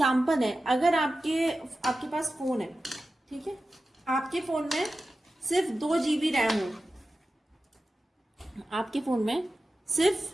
है, अगर आपके पास फोन है, ठीक है, आपके फोन में सिर्फ 2 GB रैम हो, आपके फोन में सिर्फ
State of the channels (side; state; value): both; normal; correlation 0.94